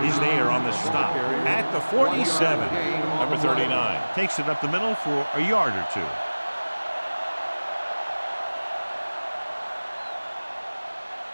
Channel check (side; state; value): both; inverted; correlation -1.00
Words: is there on the stop at the 47. Number 39 takes it up the middle for a yard or two.